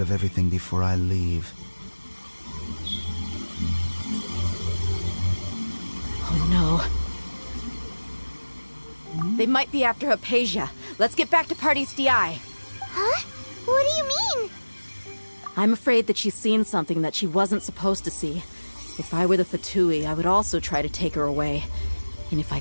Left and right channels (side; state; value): both; inverted; correlation -1.00